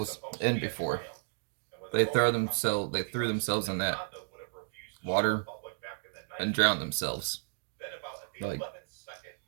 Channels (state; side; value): silent; left; digital silence